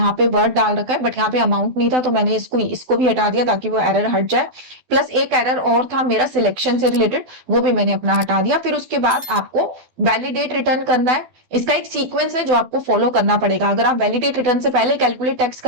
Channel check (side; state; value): left; late; 12 ms